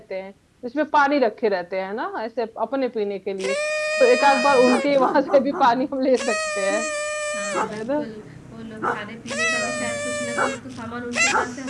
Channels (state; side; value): identical; both; correlation 1.00